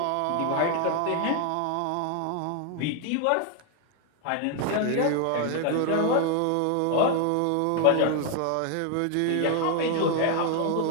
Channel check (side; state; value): both; different; correlation 0.00